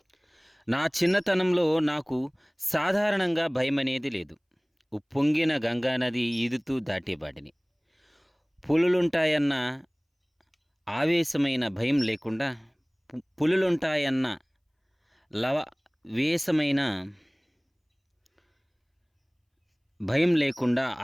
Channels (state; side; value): identical; both; correlation 1.00